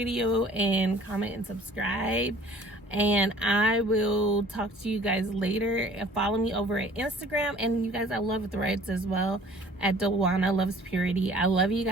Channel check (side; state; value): both; normal; correlation 0.52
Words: and comment and subscribe. And I will talk to you guys later. Follow me over at Instagram. And you guys, I love Threads as well, at Dewana Loves Purity. I love you